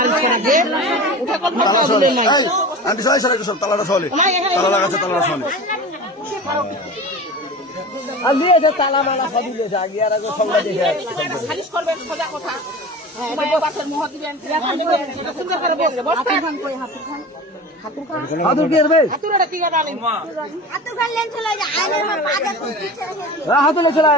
তালা চল্লিশ আন্টি সাই সারা সব তালাটা চল্লিশ তালা লাগাচ্ছে তালাটা চল্লিশ তালা মালা সবই দিয়েছে আগে আর আগে সব দিয়েছে খালিশ করবেন সোজা কথা বাসের মোহ দিবেন সুন্দর করে বলবে বসতে খান কই হাতুর খান হাতুর কি করবে হাতুরটা কি করে আনেন হাতুর খান লেন চলে যায় আইনের মা পাজা হাতুর চলে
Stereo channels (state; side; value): normal; both; correlation 0.33